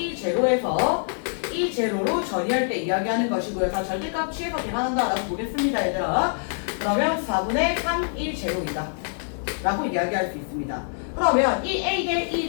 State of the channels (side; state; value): right; silent; 62 dB below the other